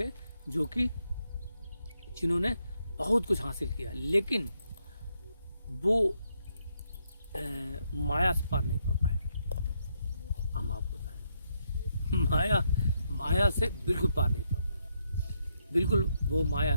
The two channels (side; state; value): both; inverted; correlation -0.78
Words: जो कि जिन्होंने बहुत कुछ हासिल किया, लेकिन वो माया से पार नहीं पा पाए। हम आपको बताएं, माया से बिल्कुल पार नहीं पा पाए, बिल्कुल वो